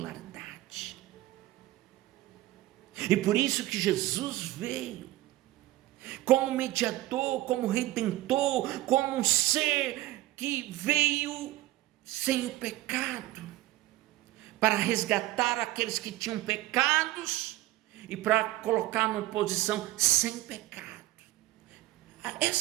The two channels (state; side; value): quieter; left; 16.8 dB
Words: E por isso que Jesus veio como mediador, como redentor, como um ser que veio sem o pecado, para resgatar aqueles que tinham pecados e para colocar numa posição sem pecado.